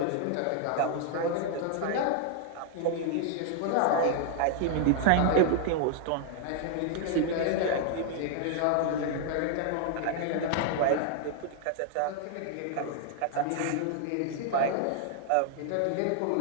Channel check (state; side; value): different; both; correlation 0.00